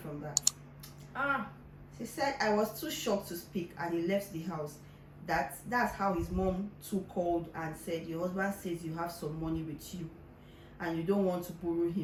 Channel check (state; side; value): identical; both; correlation 1.00